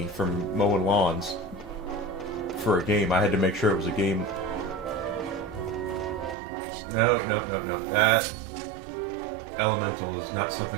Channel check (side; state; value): left; drops out; at 6.4 s